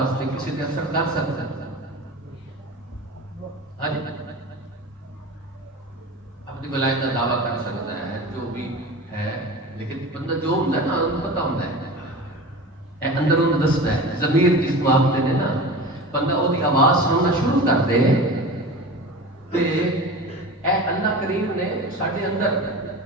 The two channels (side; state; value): both; normal; correlation 0.33